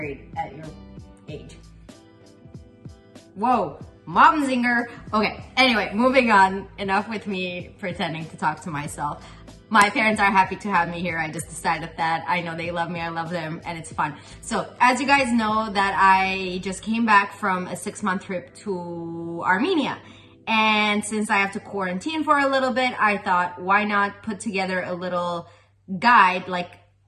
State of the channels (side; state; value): both; identical; correlation 1.00